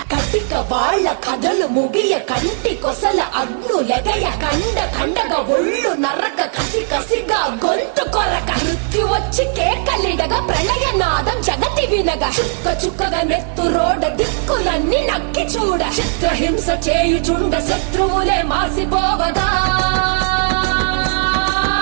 కటిక వాళ్ళ కథలు ముగియ కంటి కొసల అగ్ను లెగయ కండ కండగ ఒళ్ళు నరక కసి కసిగా గొంతు కొరక మృత్యు వచ్చి కేకలిడగా ప్రళయ నాదం జగతి వినగా చుక్క చుక్కగా నెత్తు రోడ దిక్కులన్నీ నక్కి చూడ చిత్రహింస చేయుచుండ శత్రువులే మాసిపోవగా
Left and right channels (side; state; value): left; silent; digital silence